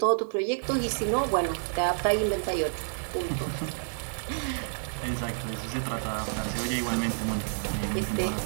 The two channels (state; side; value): silent; left; 58 dB below the other